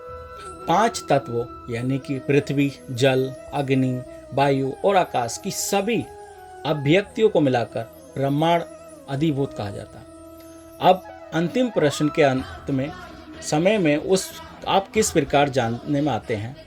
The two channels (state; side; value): identical; both; correlation 1.00